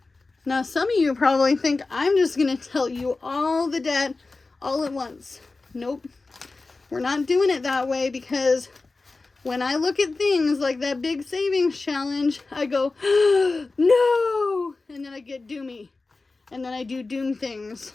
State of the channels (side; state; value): right; quieter; 3.6 dB